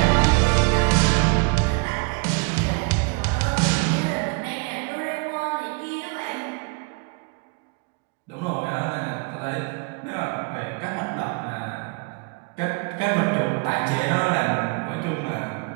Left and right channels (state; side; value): quieter; left; 32.3 dB